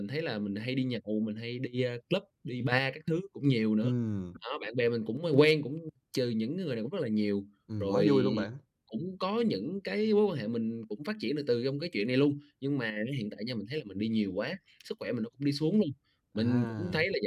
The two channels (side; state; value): both; identical; correlation 1.00